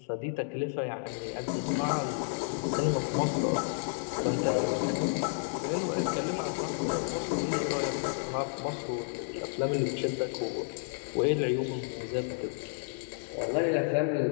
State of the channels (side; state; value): right; silent; digital silence